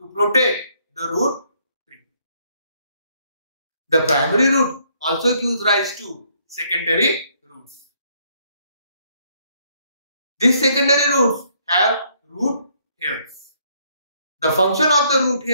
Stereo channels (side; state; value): both; inverted; correlation -0.69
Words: protect the root tree. The primary root also gives rise to secondary roots. These secondary roots have root hairs. The function of the root